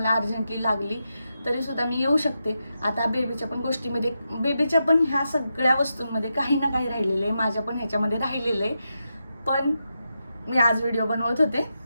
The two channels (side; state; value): both; inverted; correlation -0.87